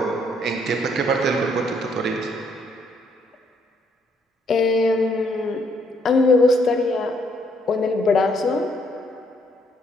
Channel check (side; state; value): both; normal; correlation 0.70